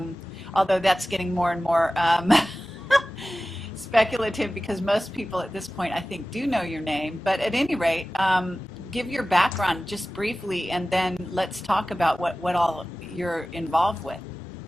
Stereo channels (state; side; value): normal; both; correlation 0.96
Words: although that's getting more and more speculative, because most people at this point, I think, do know your name. But at any rate, give your background just briefly, and then let's talk about what all you're involved with.